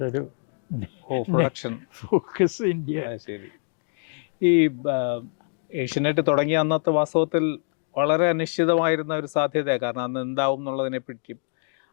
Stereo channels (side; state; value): right; silent; 61 dB below the other